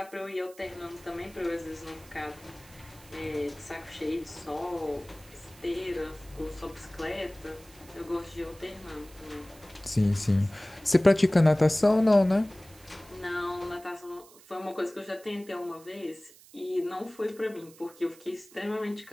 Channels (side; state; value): right; noise; hiss, 23 dB below the sound